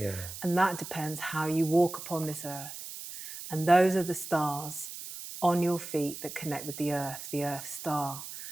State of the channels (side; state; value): right; noise; hiss, 10 dB below the sound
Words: And that depends how you walk upon this earth. And those are the stars on your feet that connect with the earth star.